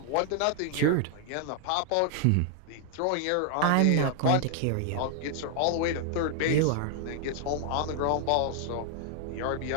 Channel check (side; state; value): both; different; correlation -0.01